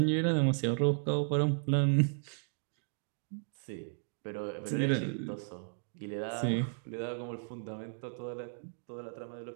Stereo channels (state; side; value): silent; left; digital silence